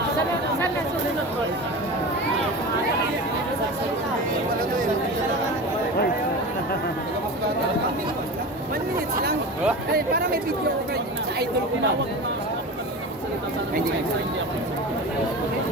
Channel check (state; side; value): normal; both; correlation 0.29